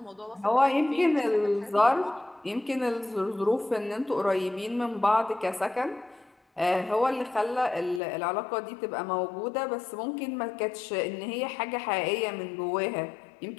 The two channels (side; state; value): right; drops out; at 8.0 s